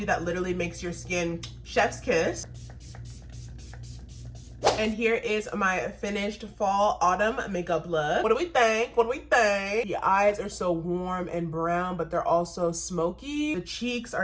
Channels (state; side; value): identical; both; correlation 1.00